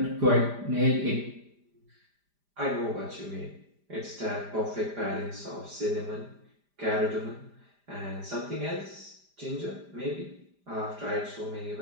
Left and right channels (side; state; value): left; late; 5.0 ms